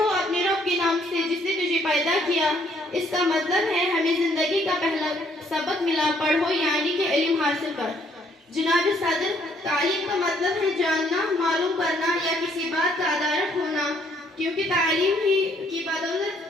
اپنے رب کے نام سے جس نے تجھے پیدا کیا۔ اس کا مطلب ہے ہمیں زندگی کا پہلا سبق ملا، پڑھو یعنی کہ علم حاصل کر۔ جناب صدر، تعلیم کا مطلب ہے جاننا، معلوم کرنا یا کسی بات کا ادارک ہونا، کیونکہ تعلیم ہی کی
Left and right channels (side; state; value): both; normal; correlation 0.66